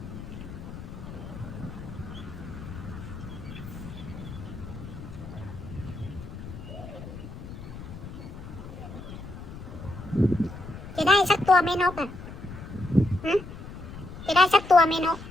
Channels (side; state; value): left; noise; rumble, 12 dB below the sound